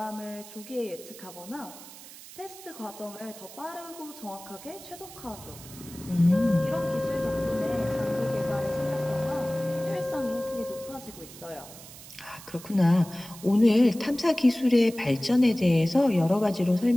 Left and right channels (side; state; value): right; noise; hiss, 17 dB below the sound